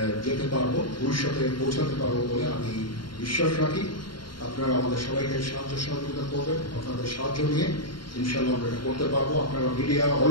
যেতে পারবো, ভবিষ্যতে পৌঁছাতে পারবো বলে আমি বিশ্বাস রাখি। আপনারা আমাদের সবাইকে সাহায্য সহযোগিতা করবেন, আপনাদের সাহায্য নিয়ে ইনশাআল্লাহ আমরা এটা করতে পারবো। আপনারা মিডিয়া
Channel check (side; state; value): right; late; 0.72 ms